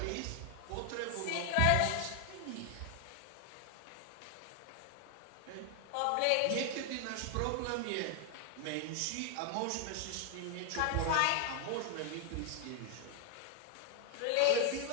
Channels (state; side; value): different; both; correlation 0.00